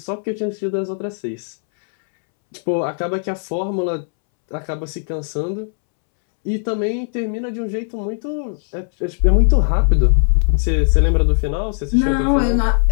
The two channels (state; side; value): silent; right; 67 dB below the other